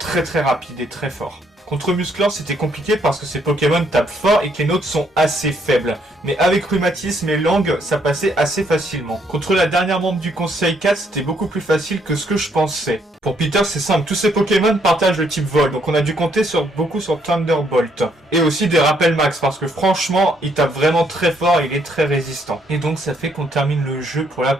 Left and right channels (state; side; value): normal; both; correlation 0.70